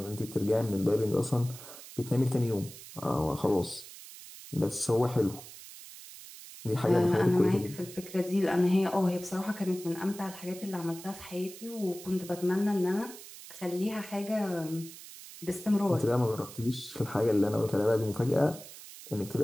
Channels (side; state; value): right; noise; hiss, 15 dB below the sound